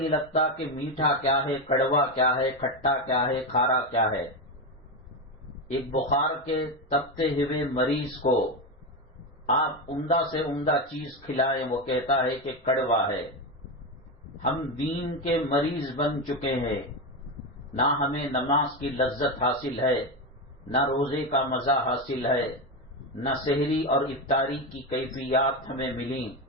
لگتا کہ میٹھا کیا ہے، کڑوا کیا ہے، کھٹا کیا ہے، کھارا کیا ہے۔ ایک بخار کے تپتے ہوئے مریض کو آپ عمدہ سے عمدہ چیز کھلائیں، وہ کہتا ہے کہ کڑوا ہے۔ ہم دین کے مریض بن چکے ہیں، نہ ہمیں نماز کی لذت حاصل ہے، نہ روزے کا مزہ حاصل ہے، نہ سحری اور افطاری کی کیفیات ہمیں ملیں،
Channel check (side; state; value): both; normal; correlation 0.13